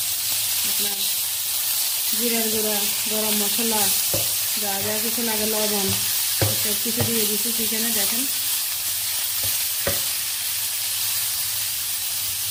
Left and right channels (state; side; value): identical; both; correlation 1.00